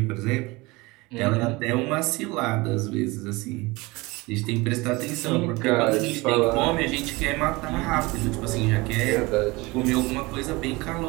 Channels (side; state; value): left; quieter; 23.2 dB